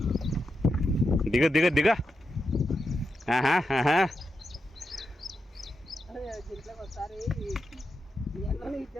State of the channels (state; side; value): normal; both; correlation 0.86